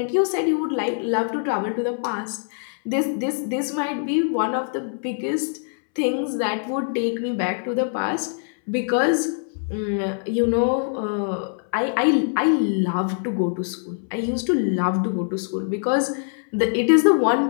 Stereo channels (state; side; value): silent; right; 63 dB below the other